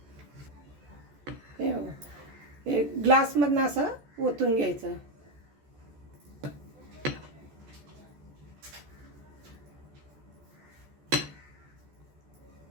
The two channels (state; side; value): late; left; 14 ms